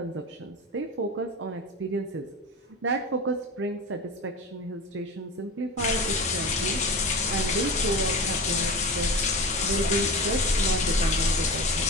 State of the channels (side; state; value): both; normal; correlation 0.29